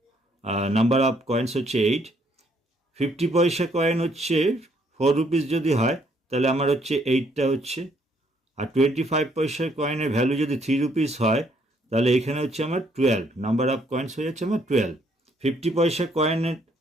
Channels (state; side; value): normal; both; correlation 0.68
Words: নাম্বার অফ কয়েন্স হচ্ছে 8। 50 পয়সা কয়েন হচ্ছে 4 রুপিস যদি হয় তাহলে আমার হচ্ছে 8টা হচ্ছে, আর 25 পয়সার কয়েনের ভ্যালু যদি 3 রুপিস হয় তাহলে এখানে হচ্ছে আমার 12, নাম্বার অফ কয়েন্স হয়ে যাচ্ছে আমার 12। 50 পয়সা কয়েনের